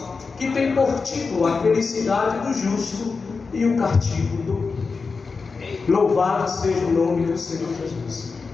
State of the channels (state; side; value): quieter; right; 4.6 dB